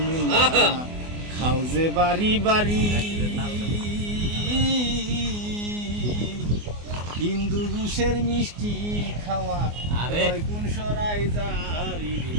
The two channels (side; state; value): left; late; 24 ms